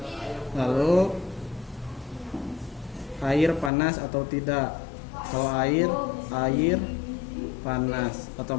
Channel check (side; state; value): right; drops out; at 3.7 s